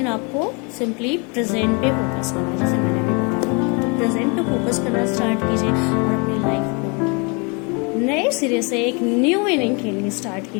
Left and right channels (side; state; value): right; quieter; 31.8 dB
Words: आपको सिंपली प्रेजेंट पे फोकस करना है, जैसे मैंने भी बताया। तो प्रेजेंट पे फोकस करना स्टार्ट कीजिए और अपनी लाइफ को नए सिरे से एक न्यू इनिंग खेलनी स्टार्ट